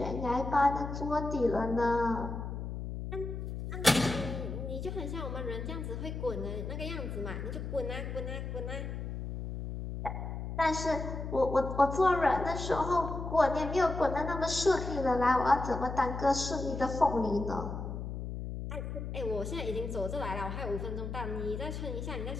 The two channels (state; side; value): noise; left; hum, 5 dB below the sound